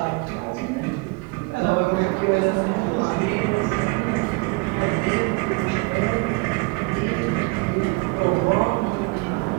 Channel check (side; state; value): left; quieter; 27.3 dB